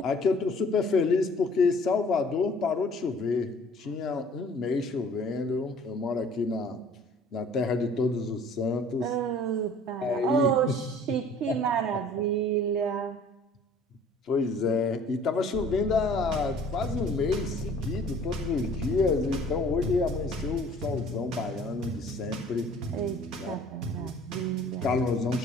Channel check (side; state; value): both; normal; correlation 0.52